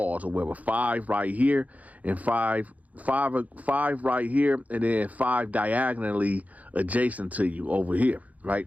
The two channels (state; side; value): late; left; 0.073 ms